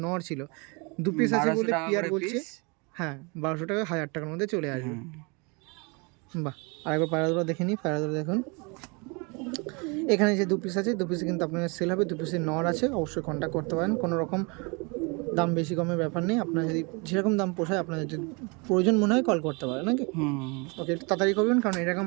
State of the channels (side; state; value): left; quieter; 30.6 dB